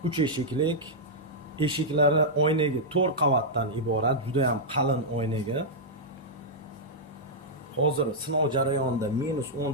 3 eshiklik, eshiklari oynaga 4 qavatdan iborat, juda ham qalin oynaga. Hozir sinov jarayonida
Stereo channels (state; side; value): normal; both; correlation -0.07